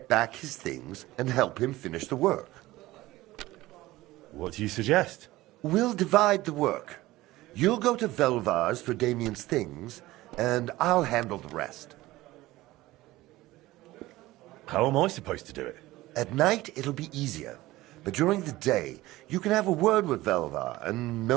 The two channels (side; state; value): left; quieter; 17.9 dB